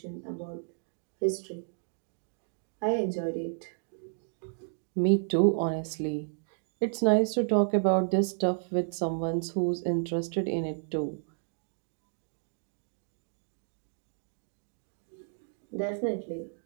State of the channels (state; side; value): silent; left; digital silence